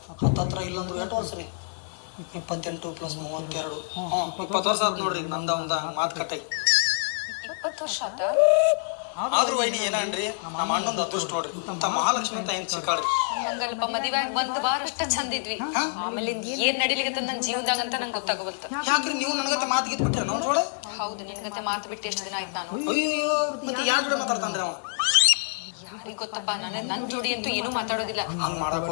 ಹತ್ರ ಇಲ್ಲಂದ್ರೆ 8 ವರ್ಷ ರೀ 28 + 32 20 ವರ್ಷ ಆಯ್ತು ನೋಡ್ರಿ ನಮ್ದು ಒಂದು ಮಾತು ಕಟ್ಟಾಗಿ 20 ವರ್ಷ ಆದ್ರೂ ವೈನಿ ಏನನ್ರಿ ನಮ್ಮ ಅಣ್ಣಂದು ಅದೃಷ್ಟ ನೋಡ್ರಿ ಇಂಥ ಮಹಾಲಕ್ಷ್ಮಿ ಅಂತ ಹೆಂಗ್ ಸಿಕ್ಕಾಳ್ರಿ ನಂಗಲ್ಪ ಮದುವೆ ಬಂದು ಬಾರಷ್ಟ ಚಂದ ಇದ್ವಿ ಆಮೇಲೆ ಏನ್ ನಡಿಲಿಕ್ಕೆ ನನ್ನ ಜೀವನದಾಗ ಅಂತ ನಂಗೆ ಗೊತ್ತಾಗಬಲ್ತ ಯಾಕ್ರಿ ನೀವು ನನಗತ್ತೆ ಮಾತು ಗೀತ್ ಬಿಟ್ರಿ ನೋಡ್ರಿ ಹೌದು ನಿನಗತ್ತೆ ಮಾತು ಬಿಟ್ಟು ಎಷ್ಟು ದಿನ ಆಯ್ತು ನಾನು ಅಯ್ಯೋ ಮತ್ತೆ ಯಾರು ಕೂಡ ಮಾತಾಡ್ತಾನ್ರಿ ಅವ ಯಾರಿಗೆ ಗೊತ್ತಪ್ಪ ನನ್ನ ಜೋಡಿ ಅಂತೂ ಏನು ಮಾತಾಡೋದಿಲ್ಲ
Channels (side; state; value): right; silent; 60 dB below the other